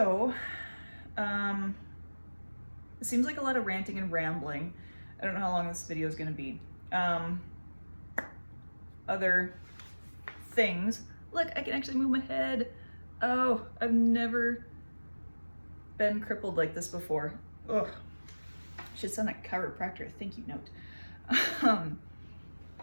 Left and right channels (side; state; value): both; inverted; correlation -1.00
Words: it seems like a lot of ranting and rambling. I don't know how long this video is gonna be. Other things. Look, I can actually move my head. Oh, I've never been crippled like this before. Ugh. Should send that chiropractor a thank you note.